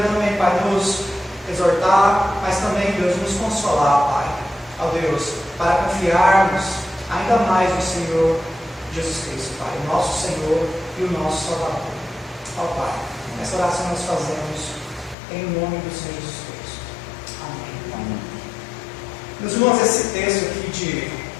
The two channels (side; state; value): right; drops out; at 15.2 s